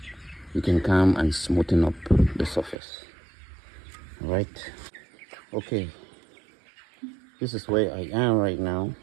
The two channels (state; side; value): drops out; left; at 2.8 s